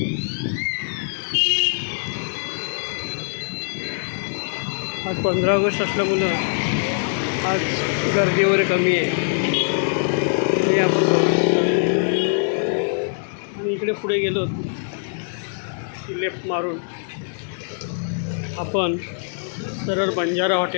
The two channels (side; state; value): right; silent; digital silence